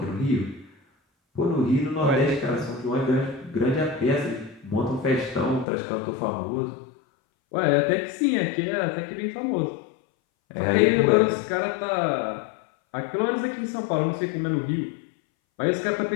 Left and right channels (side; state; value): right; drops out; at 5.7 s